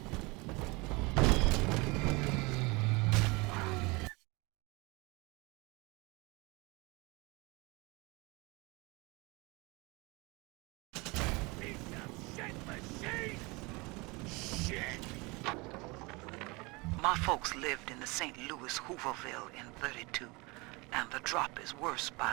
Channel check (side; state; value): left; quieter; 25.9 dB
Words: My folks lived in the St. Louis Hooverville in 32, and the drop is worse by